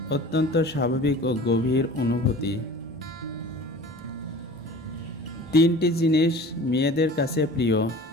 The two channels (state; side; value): normal; both; correlation 0.41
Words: অত্যন্ত স্বাভাবিক ও গভীর অনুভূতি। তিনটি জিনিস মেয়েদের কাছে প্রিয়।